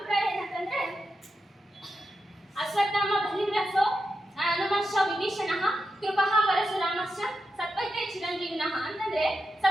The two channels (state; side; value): normal; both; correlation 0.88